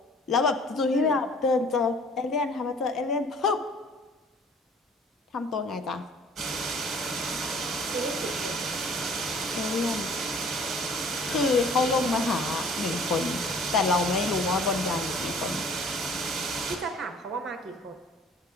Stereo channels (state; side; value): normal; both; correlation 0.53